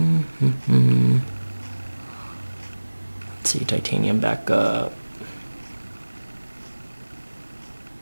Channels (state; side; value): inverted; both; correlation -1.00